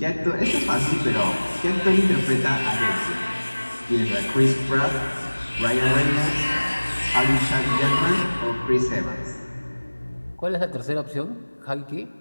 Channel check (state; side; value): inverted; both; correlation -1.00